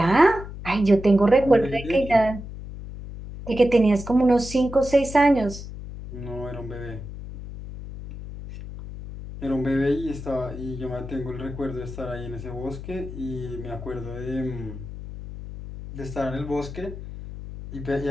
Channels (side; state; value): left; noise; hum, 11 dB below the sound